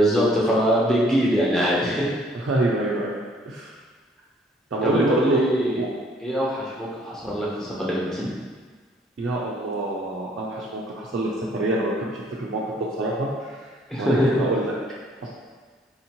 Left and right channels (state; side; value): normal; both; correlation 0.61